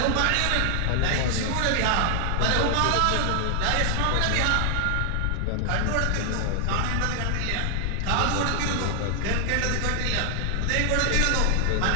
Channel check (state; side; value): different; both; correlation 0.00